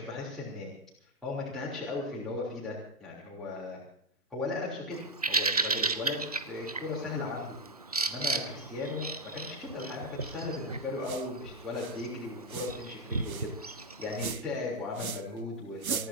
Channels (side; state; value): both; normal; correlation 0.07